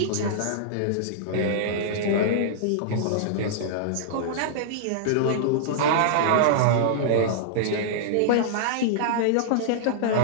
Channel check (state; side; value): different; both; correlation -0.02